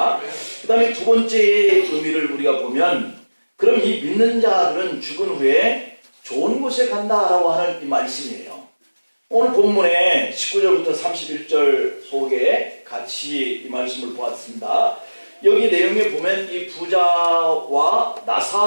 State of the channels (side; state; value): both; inverted; correlation -1.00